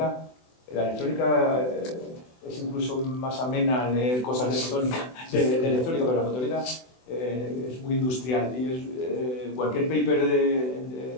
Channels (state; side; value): late; right; 24 ms